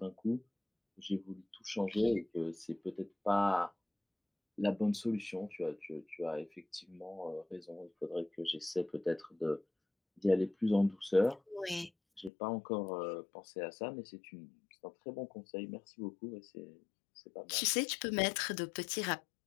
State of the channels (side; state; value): right; drops out; at 12.3 s